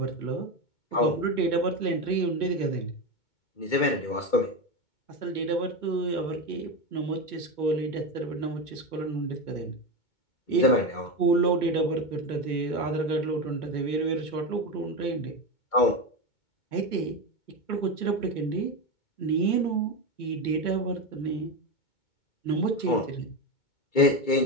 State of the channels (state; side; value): late; right; 2.2 ms